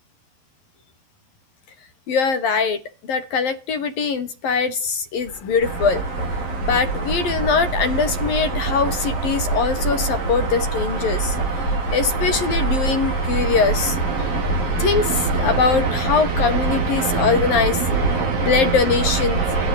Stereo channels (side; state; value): right; late; 11 ms